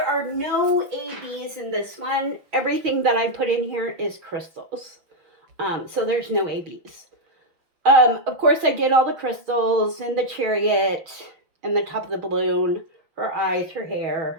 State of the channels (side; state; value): left; late; 6.3 ms